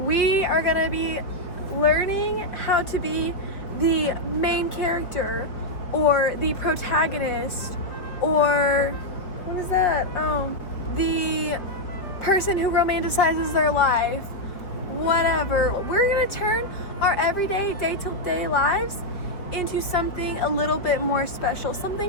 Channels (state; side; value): late; right; 4.7 ms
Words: are gonna be learning how to be the main character or the protagonist or what is that? Oh, the person who romanticizes their life, whatever. We're gonna turn our everyday, day-to-day lives into something a little bit more special,